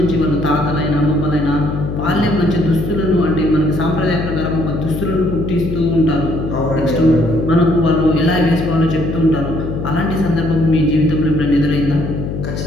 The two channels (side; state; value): left; noise; hum, 5 dB below the sound